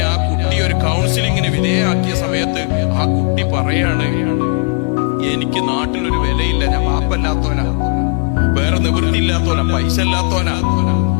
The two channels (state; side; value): quieter; right; 37.1 dB